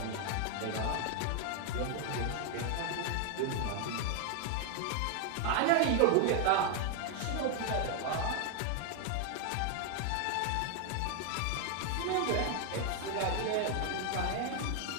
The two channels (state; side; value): different; both; correlation 0.00